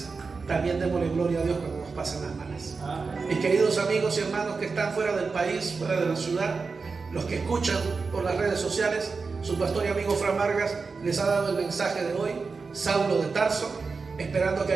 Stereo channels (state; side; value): quieter; left; 4.6 dB